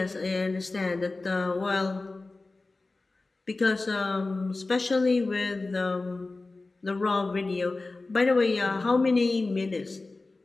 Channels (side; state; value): right; quieter; 3.4 dB